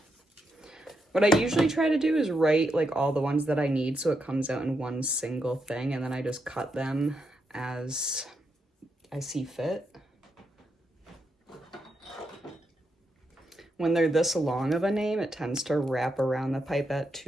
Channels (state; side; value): normal; both; correlation 0.83